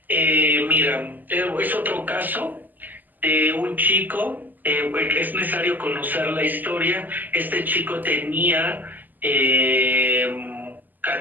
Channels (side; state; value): left; late; 0.086 ms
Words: Mira, es otro caso de un chico, es necesario conocer la historia. Este chico tenía